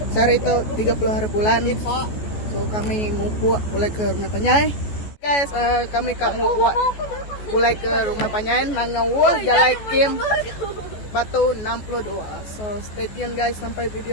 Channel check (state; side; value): late; right; 14 ms